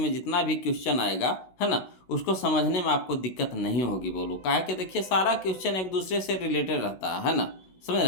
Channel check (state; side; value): late; right; 16 ms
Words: जितना भी क्वेश्चन आएगा, है ना, उसको समझने में आपको दिक्कत नहीं होगी। बोलो काहे कि देखिए सारा क्वेश्चन एक दूसरे से रिलेटेड रहता है ना, समझ